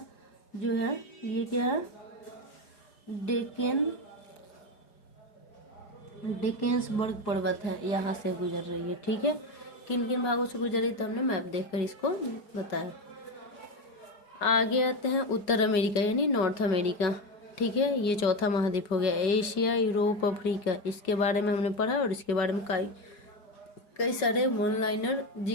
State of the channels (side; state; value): right; late; 4.9 ms